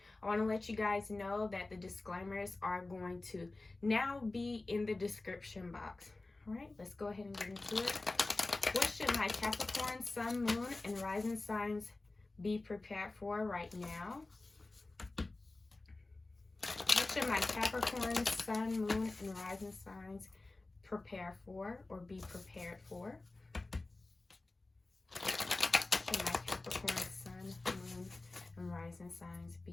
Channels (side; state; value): right; quieter; 3.1 dB